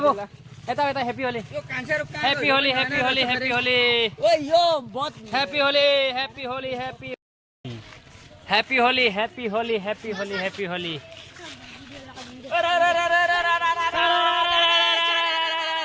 एता एता हैप्पी होली यो कांचा रुक happy Holi happy Holi happy Holi ओए यो बहुत happy Holi happy Holi happy happy Holi happy Holi happy Holi happy Holi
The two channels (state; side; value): identical; both; correlation 1.00